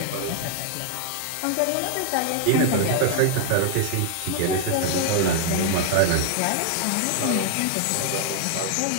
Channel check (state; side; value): different; both; correlation 0.00